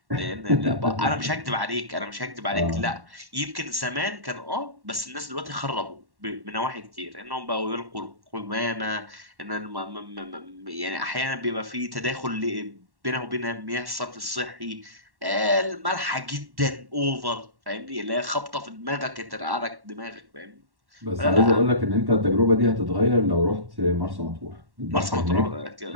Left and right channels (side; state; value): left; late; 1.1 ms